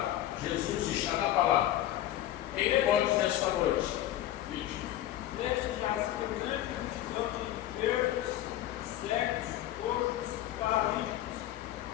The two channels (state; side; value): quieter; right; 13.3 dB